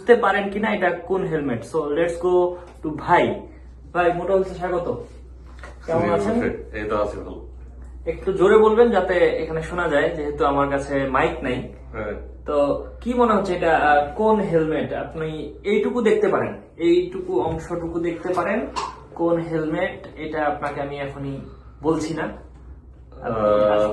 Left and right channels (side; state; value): both; identical; correlation 1.00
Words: পারেন কিনা এটা কোন helmet. So let's go to ভাই। ভাই, মোটা হচ্ছে স্বাগত। কেমন আছেন? এই তো আছে ভালো। একটু জোরে বলবেন যাতে এখানে শোনা যায়, যেহেতু আমার কাছে মাইক নাই। হ্যাঁ, তো কি মনে হচ্ছে এটা কোন হেলমেট? আপনি এইটুকু দেখতে পারেন, এইটুকু অংশটুকু দেখতে পারেন কোন হেলমেট এটা আপনাকে আমি এখনই বলছি না।